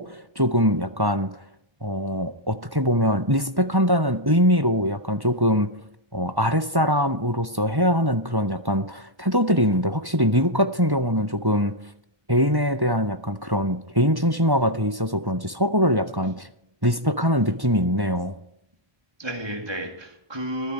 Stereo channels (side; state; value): left; late; 1.1 ms